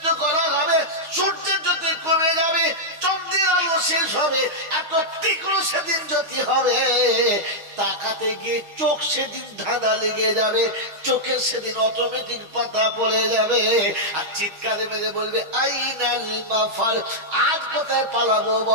করা হবে, সূর্যের জ্যোতি কমে যাবে, চন্দ্রের আলো শেষ হবে। এত তীক্ষ্ণ সেদিন জ্যোতি হবে, তাকাতে গিয়ে চোখ সেদিন ধাঁধা লেগে যাবে, চোখের সেদিন অটোমেটিক পাতা পড়ে যাবে। আর চিৎকারে মেরে বলবে আইনাল মাফার, আজ কোথায় পালাবো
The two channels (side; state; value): left; late; 6.4 ms